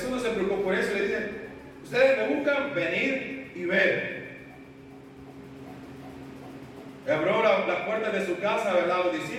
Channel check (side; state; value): both; identical; correlation 1.00